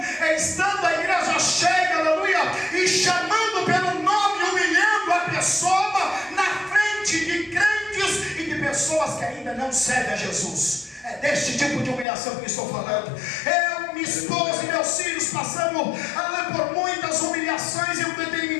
é estando a igreja cheia, aleluia, e chamando pelo nome, humilhando a pessoa na frente de crentes e de pessoas que ainda não servem a Jesus. É deste tipo de humilhação que estou falando. Eu, minha esposa e meus filhos passamos por muitas humilhações em um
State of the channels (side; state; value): right; drops out; at 12.1 s